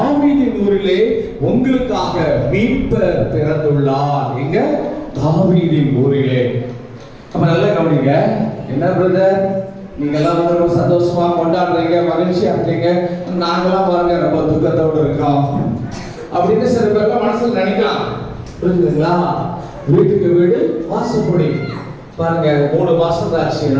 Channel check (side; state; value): both; identical; correlation 1.00